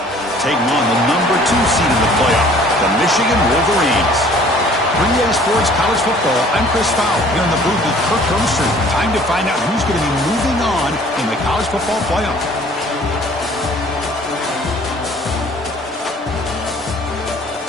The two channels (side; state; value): both; normal; correlation 0.53